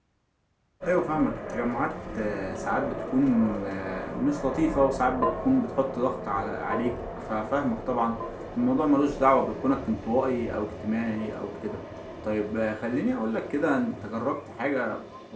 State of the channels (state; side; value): identical; both; correlation 1.00